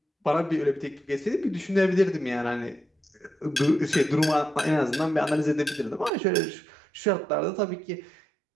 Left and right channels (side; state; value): left; drops out; at 6.1 s